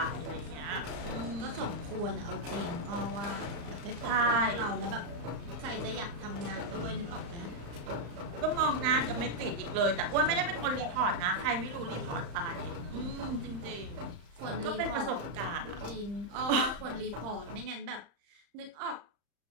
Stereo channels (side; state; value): left; late; 34 ms